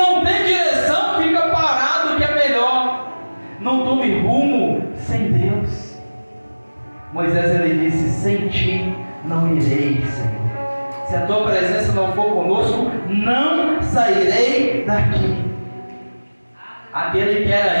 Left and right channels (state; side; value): inverted; both; correlation -1.00